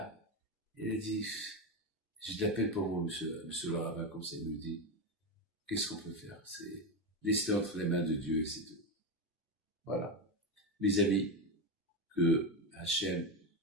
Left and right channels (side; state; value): both; normal; correlation 0.13